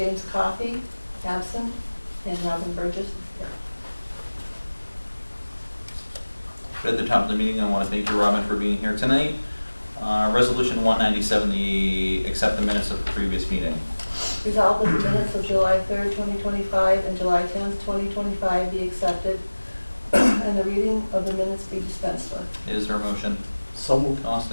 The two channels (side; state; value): both; inverted; correlation -1.00